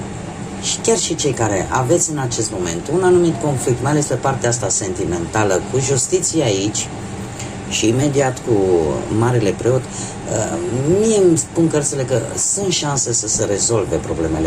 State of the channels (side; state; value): both; identical; correlation 1.00